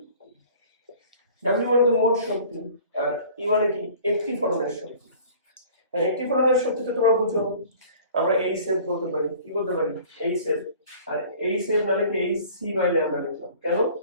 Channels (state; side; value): inverted; both; correlation -0.48